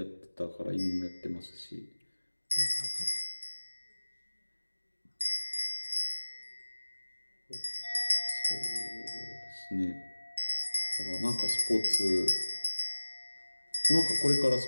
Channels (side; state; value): both; inverted; correlation -1.00